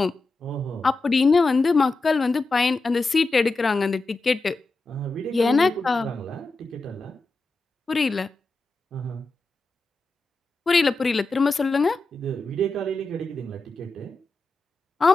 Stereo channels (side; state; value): right; quieter; 3.2 dB